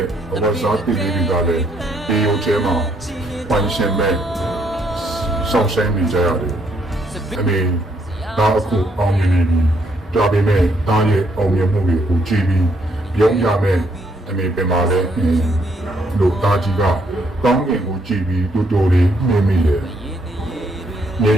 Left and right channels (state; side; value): normal; both; correlation 0.72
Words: ့ဝါစားပီလေးတွေကလည်းဒီရုပ်ထဲမှာပိုင်ရှင်မဲ့ဆောင်းဆိုင်နေကြရတယ်အမေဒါအခုအောင်မြင်နေပြီဒါပေမဲ့တားရဲ့အောင်မြင်မှုတွေကိုကြည့်ပြီးပြုံးရမယ်အမေပြန်လာတဲ့လို့တားကြီးကကောင်းကင်ကိုကြည့်ပြီးတူတူလေးနေမိတယ်။မြေ